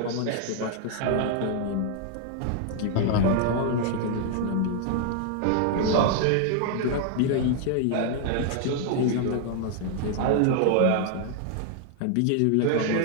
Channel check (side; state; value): both; different; correlation 0.00